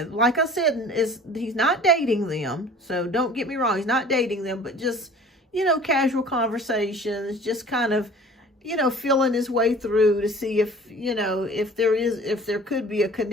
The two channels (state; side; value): normal; both; correlation 0.47